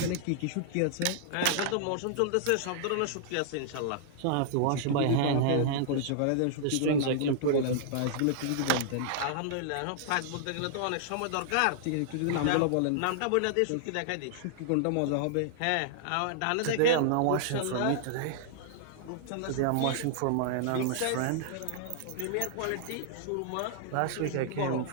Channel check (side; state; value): both; different; correlation -0.01